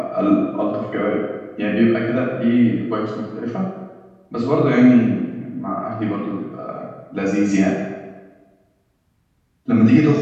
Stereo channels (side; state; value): both; identical; correlation 1.00